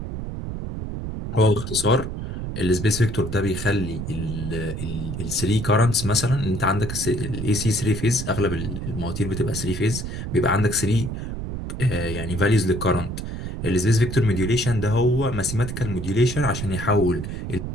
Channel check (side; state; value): right; noise; rumble, 6 dB below the sound